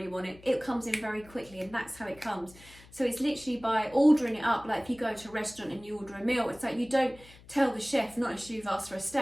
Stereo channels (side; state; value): left; noise; hum, 23 dB below the sound